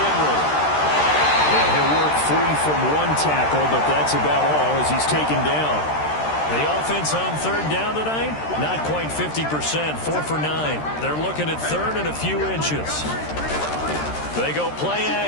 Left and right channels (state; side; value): late; right; 13 ms